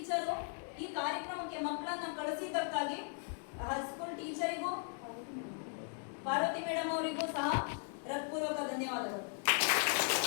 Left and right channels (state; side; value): silent; right; 53 dB below the other